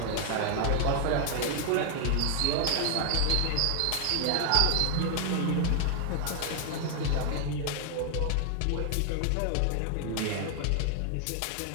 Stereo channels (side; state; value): both; different; correlation 0.00